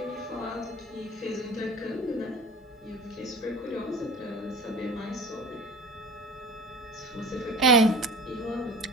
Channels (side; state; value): both; normal; correlation 0.39